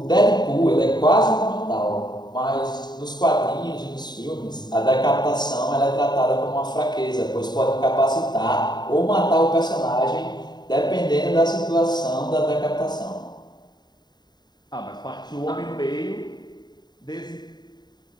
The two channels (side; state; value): right; late; 0.20 ms